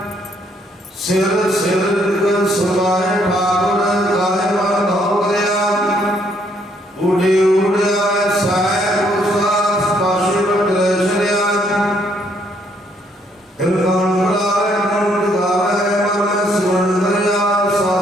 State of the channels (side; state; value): both; normal; correlation 0.69